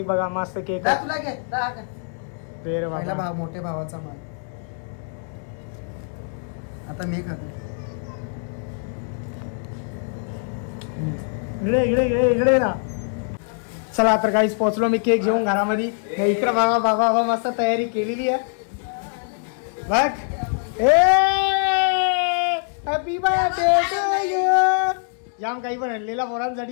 बघा मस्त केक. तुला घे पहिला भाव मोठ्या भावाचा माल. आता मी खातो. इकडे इकडे इकडे इकडे ना. चला तर काहीच पोहोचलो मी केक घेऊन घरामध्ये. इकडे बाबा बाबा बाबा मस्त तयारी केलेली आहे बघ. Happy birthday to you. जाम काही पण आणलेला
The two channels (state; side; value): silent; right; 62 dB below the other